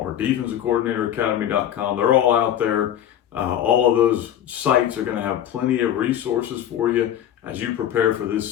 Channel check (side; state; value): right; quieter; 10.8 dB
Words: defensivecoordinatoracademy.com. They're all out there. All of those sites are going to have plenty of resources for you as you prepare for this